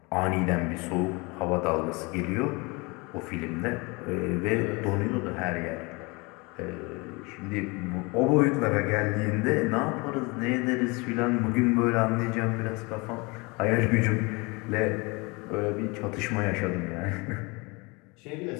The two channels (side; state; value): right; quieter; 27.1 dB